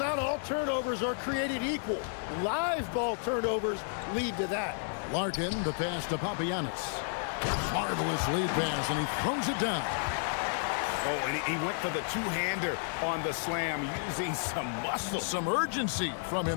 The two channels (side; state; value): right; silent; 57 dB below the other